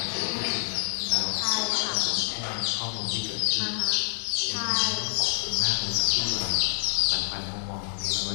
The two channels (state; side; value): silent; right; 60 dB below the other